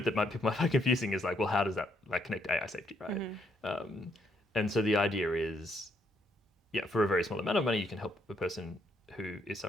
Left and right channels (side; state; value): both; normal; correlation 0.73